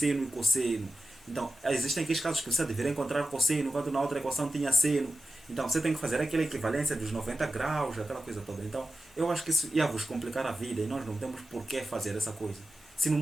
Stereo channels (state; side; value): normal; both; correlation 0.94